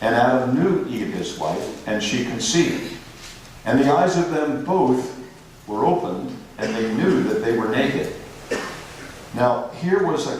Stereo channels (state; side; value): identical; both; correlation 1.00